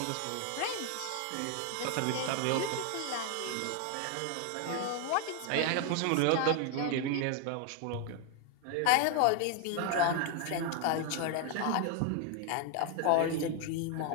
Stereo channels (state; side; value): different; both; correlation 0.01